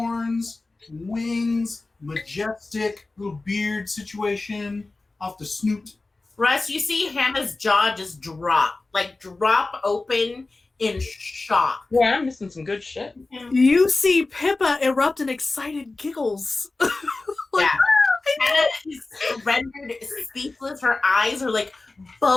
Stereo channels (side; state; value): right; quieter; 3.4 dB